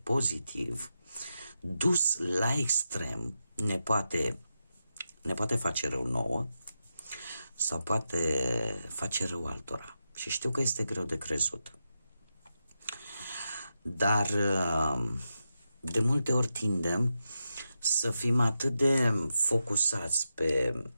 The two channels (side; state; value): both; inverted; correlation -0.87